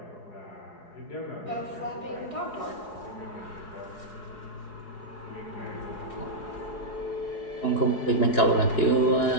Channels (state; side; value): late; right; 4.7 ms